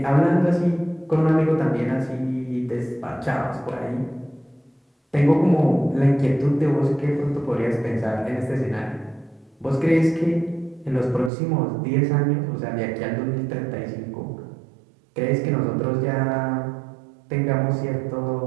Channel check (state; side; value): drops out; left; at 11.3 s